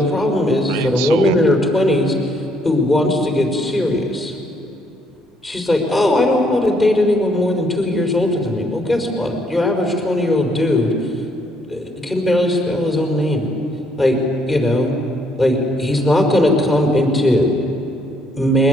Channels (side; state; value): both; normal; correlation 0.69